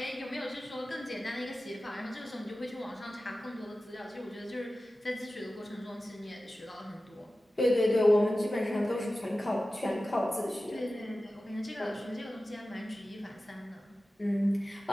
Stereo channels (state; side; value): normal; both; correlation 0.95